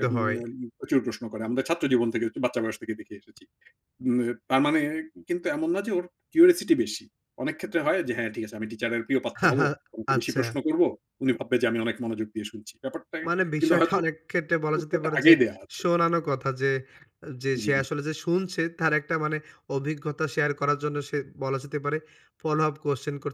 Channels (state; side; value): identical; both; correlation 1.00